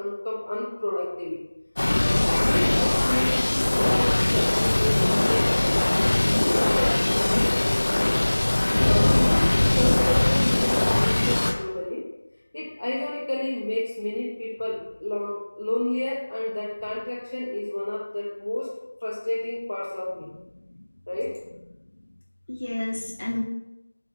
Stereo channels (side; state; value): both; inverted; correlation -1.00